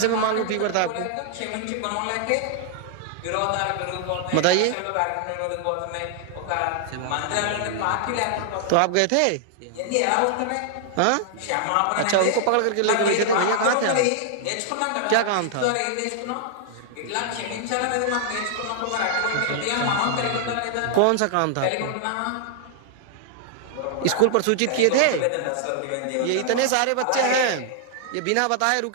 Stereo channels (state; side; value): different; both; correlation -0.01